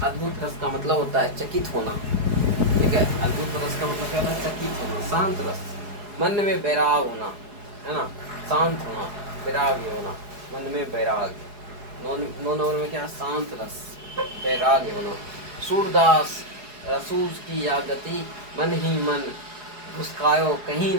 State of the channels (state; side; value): late; left; 4.8 ms